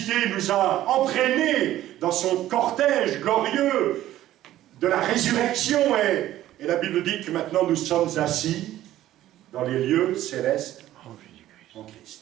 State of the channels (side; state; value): left; quieter; 13.8 dB